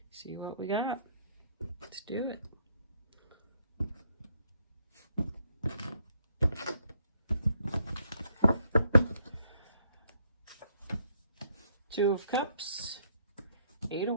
See what we got. Let's do it. Two of Cups, Eight of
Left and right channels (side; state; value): both; inverted; correlation -0.70